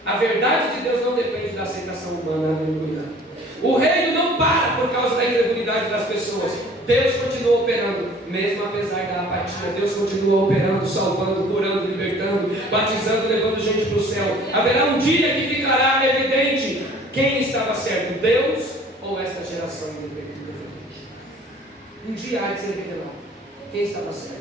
A verdade de Deus não depende da aceitação humana. Aleluia. O reino não para por causa da incredulidade das pessoas. Deus continua operando, mesmo apesar da apatia. Deus continua operando, salvando, curando, libertando, batizando, levando gente para o céu. Haverá um dia que ficará evidente quem estava certo, Deus ou esta geração independente. Um dia há de ser revelado quem estava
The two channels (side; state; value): both; normal; correlation 0.51